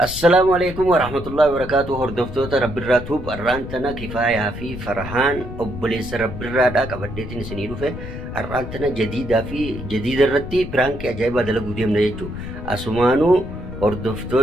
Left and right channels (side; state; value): left; noise; rumble, 10 dB below the sound